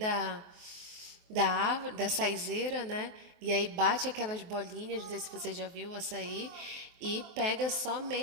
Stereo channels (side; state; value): left; late; 23 ms